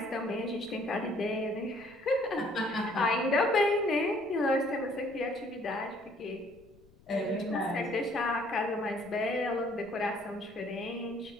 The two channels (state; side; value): noise; left; rumble, 28 dB below the sound